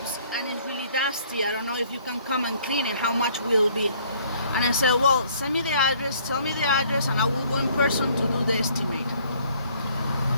and it's really dusty. I don't know if you can come and clean it, how much will it be? And I said, well, send me the address, tell me the address, and I will go in person to do the estimate.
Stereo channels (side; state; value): both; inverted; correlation -0.60